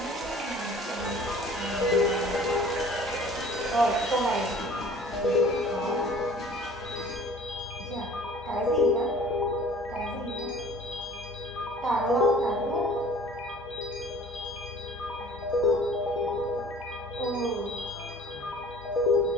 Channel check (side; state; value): both; normal; correlation 0.48